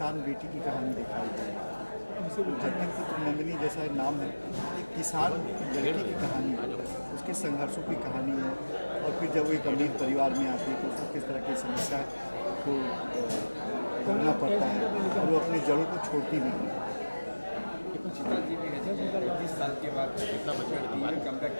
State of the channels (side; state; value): both; inverted; correlation -1.00